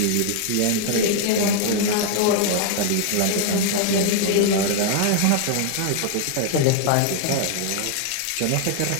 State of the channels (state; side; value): different; both; correlation 0.00